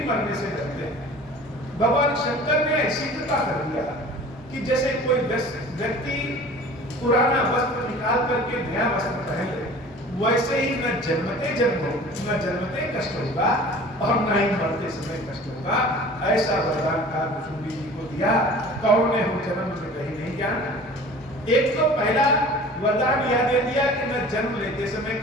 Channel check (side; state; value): both; normal; correlation 0.44